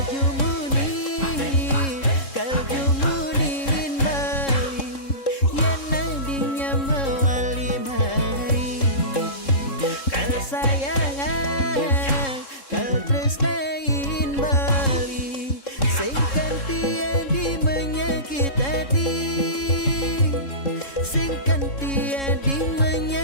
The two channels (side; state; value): right; late; 3.7 ms